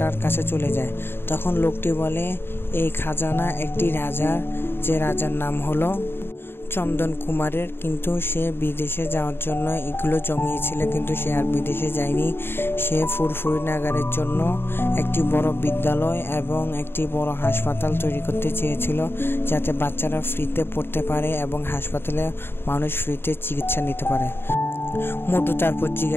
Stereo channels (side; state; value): right; late; 0.11 ms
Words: কাছে চলে যায়। তখন লোকটি বলে এই খাজানা একটি রাজার, যে রাজার নাম হলো চন্দন কুমারের, কিন্তু সে বিদেশে যাওয়ার জন্য এগুলো জমিয়েছিল, কিন্তু সে আর বিদেশে যায়নি। সে ফুরফুরি নাগারের জন্য একটি বড় বিদ্যালয় এবং একটি বড় হাসপাতাল তৈরি করতে চেয়েছিল, যাতে বাচ্চারা ফ্রিতে পড়তে পারে এবং হাসপাতালে মানুষ ফ্রিতে চিকিৎসা নিতে পারে। মোটু তারপর